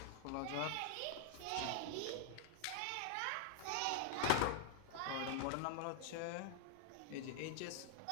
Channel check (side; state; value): both; different; correlation 0.00